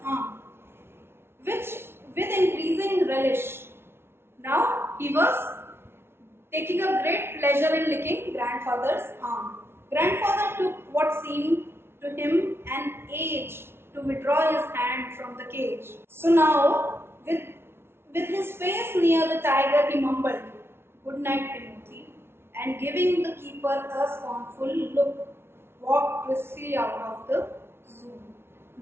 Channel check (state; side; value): late; left; 0.12 ms